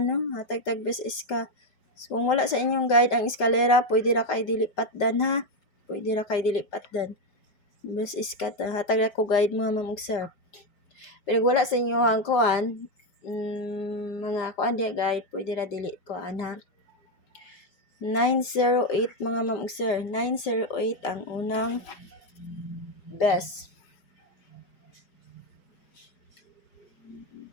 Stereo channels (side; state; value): right; late; 5.1 ms